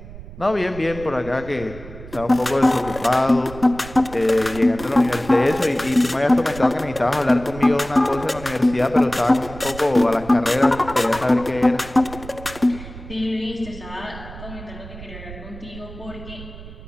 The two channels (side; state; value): right; noise; rumble, 15 dB below the sound